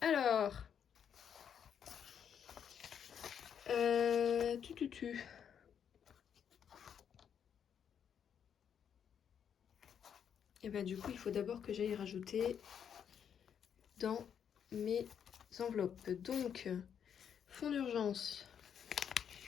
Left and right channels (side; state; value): right; quieter; 8.2 dB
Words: Alors. Tu. Et bah du coup il faut d'abord que j'aille rajouter dans mes enveloppes. Donc fonds d'urgence.